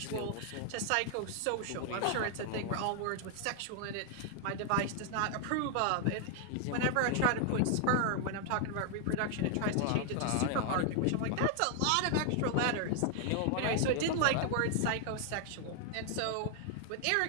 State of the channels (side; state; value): both; different; correlation 0.00